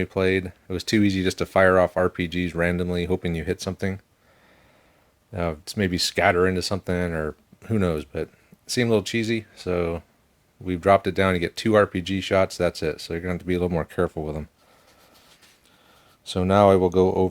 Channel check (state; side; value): identical; both; correlation 1.00